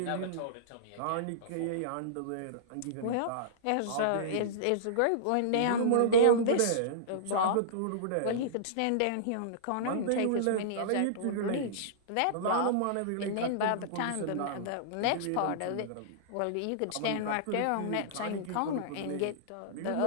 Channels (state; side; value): different; both; correlation -0.03